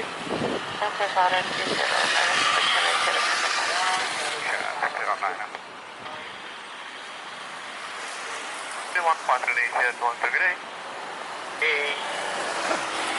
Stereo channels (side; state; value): both; identical; correlation 1.00